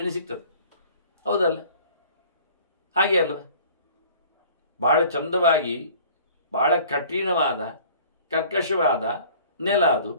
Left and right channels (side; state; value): both; inverted; correlation -0.49